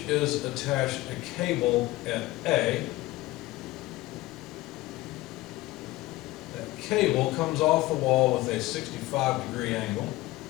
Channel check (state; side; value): quieter; right; 18.4 dB